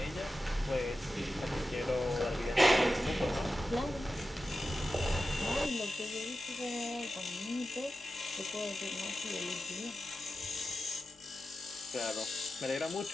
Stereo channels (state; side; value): normal; both; correlation 0.92